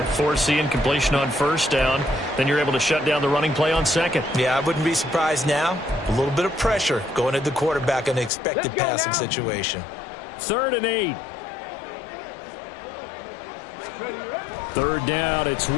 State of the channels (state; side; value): drops out; right; at 8.3 s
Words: Force the incompletion on 1st down. Then you're able to shut down the running play on 2nd. Yeah, I wouldn't be surprised now. A little bit of pressure going at the quarterback in an expected passing situation. 3rd and 8. 3rd down, it's